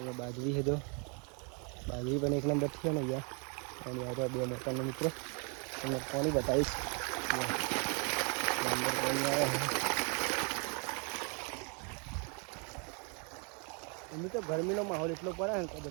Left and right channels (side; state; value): left; quieter; 35.8 dB